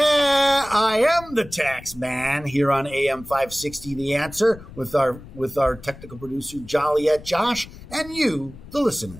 I am the tax man here on AM 560 The Answer with our technical producer Joliet Josh and you, the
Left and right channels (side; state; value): left; noise; rumble, 18 dB below the sound